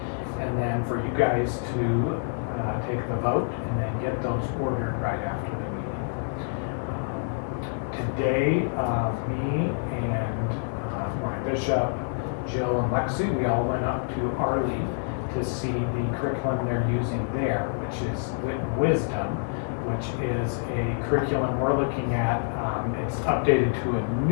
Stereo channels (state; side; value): silent; right; 60 dB below the other